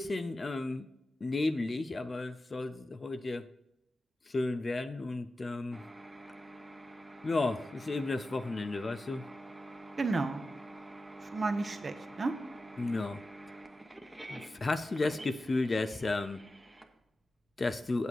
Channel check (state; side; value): normal; both; correlation 0.93